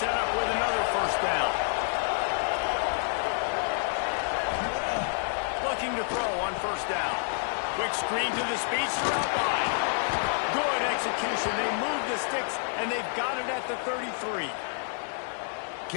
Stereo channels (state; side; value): silent; right; digital silence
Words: up with another first down. Looking to throw on first down. Quick screen to the speedster out wide. Good execution. They move the sticks, and they've got it at the 33.